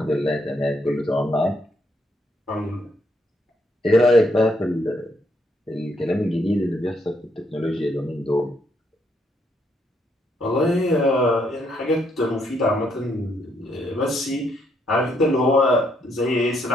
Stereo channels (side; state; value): both; normal; correlation 0.74